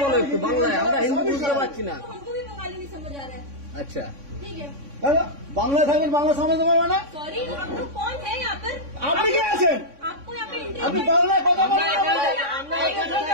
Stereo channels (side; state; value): left; late; 3.6 ms